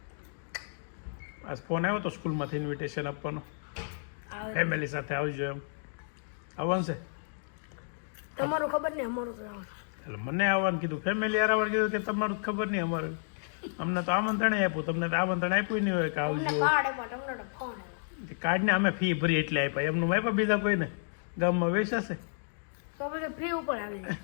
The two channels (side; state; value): right; silent; digital silence